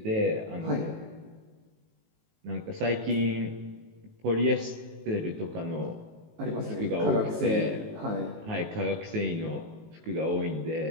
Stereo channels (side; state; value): left; late; 19 ms